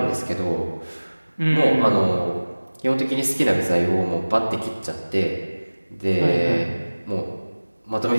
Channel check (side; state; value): both; inverted; correlation -1.00